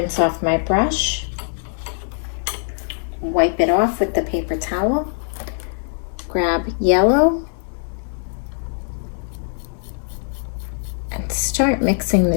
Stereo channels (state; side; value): silent; right; digital silence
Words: off my brush, wipe it off with the paper towel, grab yellow, and start mixing